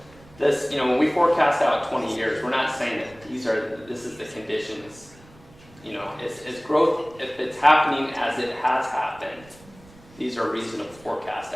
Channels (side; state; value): right; noise; rumble, 24 dB below the sound